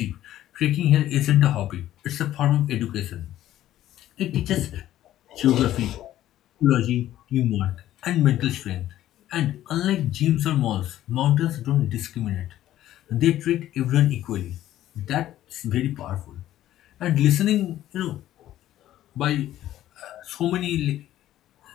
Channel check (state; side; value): quieter; right; 13.2 dB